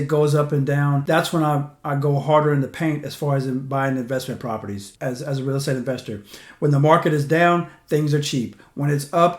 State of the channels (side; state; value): both; identical; correlation 1.00